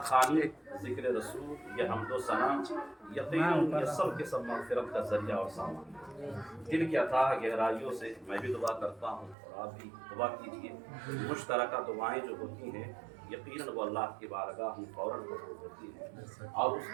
خوانی، ذکر رسول، یہ حمد و ثنا، یقیناً یہ سب کے سب مغفرت کا ذریعہ اور سامان۔ دل کی اتھاہ گہرائیوں سے میں بھی دعا کرتا ہوں اور آپ بھی دعا کیجیے۔ مشترکہ دعائیں جو ہوتی ہیں یقیناً وہ اللہ کی بارگاہ میں فوراً قبول ہوتی ہیں، اور اس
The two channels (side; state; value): left; drops out; at 9.3 s